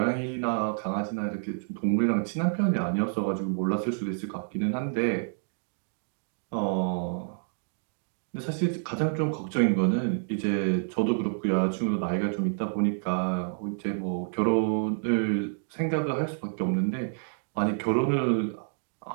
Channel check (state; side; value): silent; left; digital silence